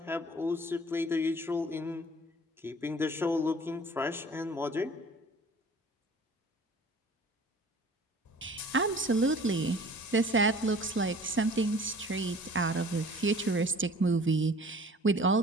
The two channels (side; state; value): both; normal; correlation 0.48